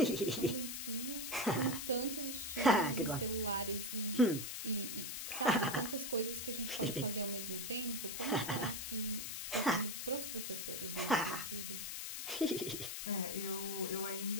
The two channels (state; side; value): noise; left; hiss, 5 dB below the sound